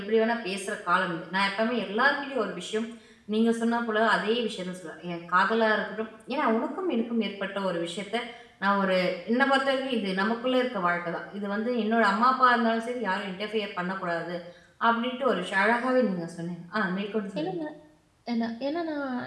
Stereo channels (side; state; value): both; identical; correlation 1.00